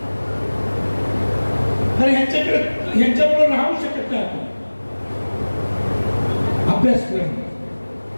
तर ह्यांच्याबरोबर राहू शकत नाही आपण. अभ्यासक्रम,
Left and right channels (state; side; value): inverted; both; correlation -1.00